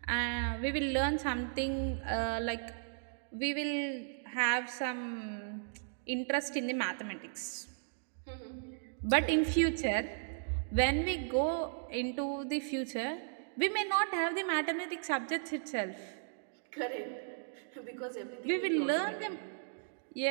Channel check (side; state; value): left; silent; digital silence